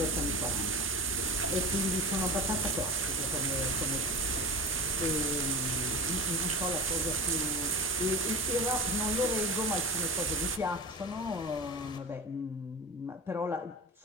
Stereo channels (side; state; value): both; normal; correlation 0.29